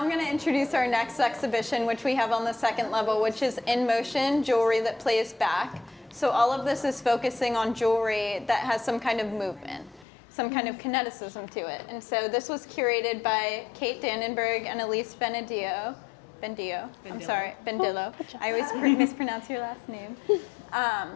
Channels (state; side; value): drops out; right; at 10.1 s